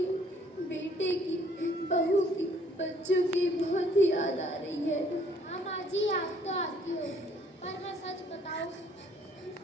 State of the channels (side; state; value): both; normal; correlation 0.61